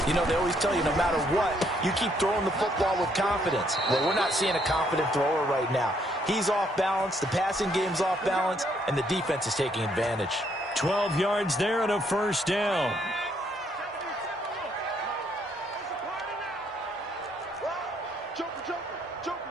You know, they always tell you no matter what, you keep throwing the football with confidence. Well, we're not seeing a confident thrower right now. He's off balance, the passing game's off balance, and the defense is taking advantage. 12 yards there and a 1st down. Joker.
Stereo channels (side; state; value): both; normal; correlation 0.70